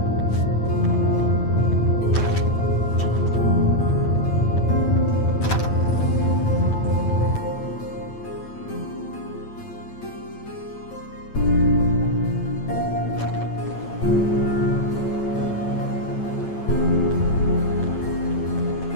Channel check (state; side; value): late; right; 9.0 ms